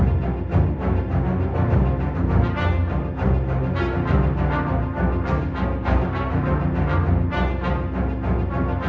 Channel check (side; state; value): both; identical; correlation 1.00